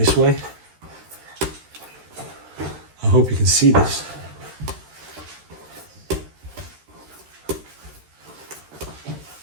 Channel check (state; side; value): late; left; 13 ms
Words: way. I hope you can see this.